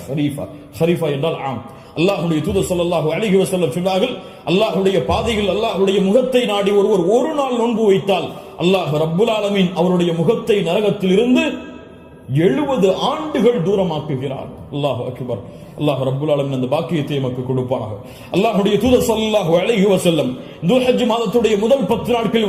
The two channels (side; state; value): both; identical; correlation 1.00